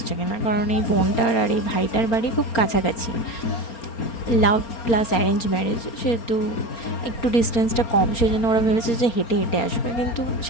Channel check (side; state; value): right; late; 4.3 ms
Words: কিনা, কারণ এই বোনটার আর এই ভাইটার বাড়ি খুব কাছাকাছি। লাভ প্লাস অ্যারেঞ্জ ম্যারেজ, সেহেতু একটু ডিস্টেন্সটা কম, সেই জন্য ওরা ভেবেছে যে হেঁটে হেঁটে আসবে। কিন্তু